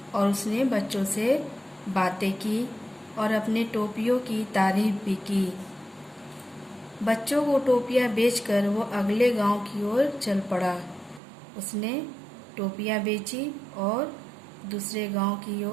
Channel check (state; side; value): drops out; left; at 11.2 s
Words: उसने बच्चों से बातें की और अपने टोपियों की तारीफ भी की। बच्चों को टोपियां बेचकर वो अगले गांव की ओर चल पड़ा। उसने टोपियां बेची और दूसरे गांव की